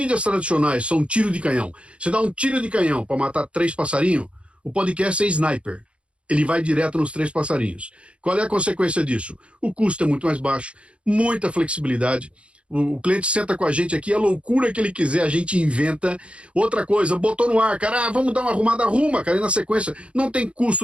tradicionais são tiro de canhão, você dá um tiro de canhão para matar 3 passarinhos, o podcast é sniper. Ele vai direto nos 3 passarinhos. Qual é a consequência disso? O custo é muito mais baixo, muita flexibilidade. O cliente senta com a gente aqui, a loucura que ele quiser, a gente inventa. Outra coisa, botou no ar, cara, vamos dar uma arrumada, arruma, cara, e na sequência não tem custo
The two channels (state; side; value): late; left; 0.059 ms